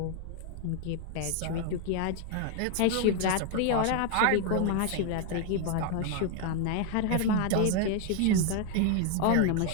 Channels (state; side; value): different; both; correlation 0.01